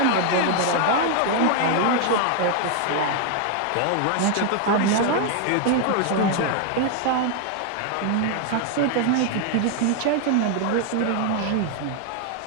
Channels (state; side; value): different; both; correlation 0.00